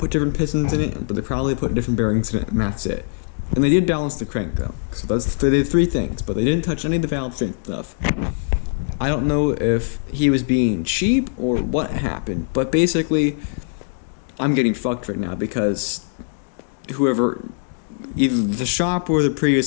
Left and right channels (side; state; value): right; silent; digital silence